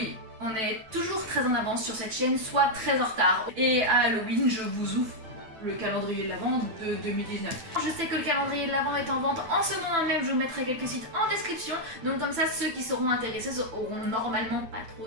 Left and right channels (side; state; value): left; late; 9.0 ms